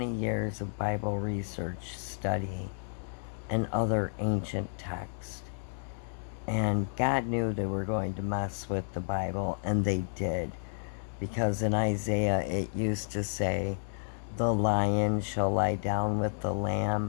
years of Bible research, study, and other ancient texts. And God knew they were going to mess with the Bible, and they did. Because in Isaiah it used to say, the lion shall lie down with the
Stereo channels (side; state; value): right; silent; digital silence